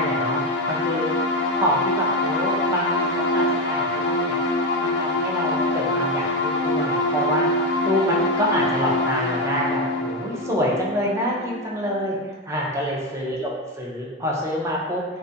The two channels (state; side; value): normal; both; correlation 0.12